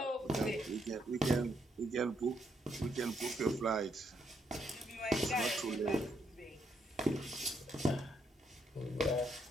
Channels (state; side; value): normal; both; correlation 0.75